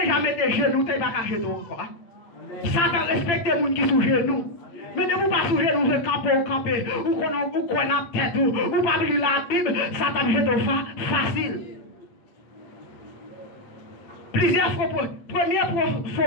mettre des genoux, tu pas qu'à jeter encore. Satan respecte les gens qui sont genoux. Mais ne vous pas sous genoux, vous camper, ou qu'on a tête, ou pas lire la Bible, Satan jette facile. Plusieurs fois, premier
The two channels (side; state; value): right; late; 8.8 ms